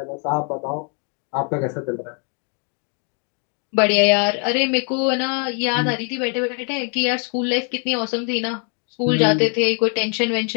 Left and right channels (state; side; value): quieter; right; 39.2 dB